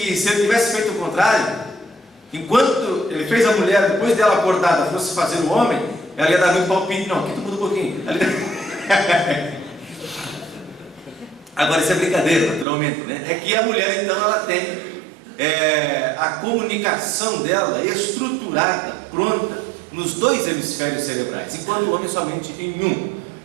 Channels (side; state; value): left; drops out; at 12.7 s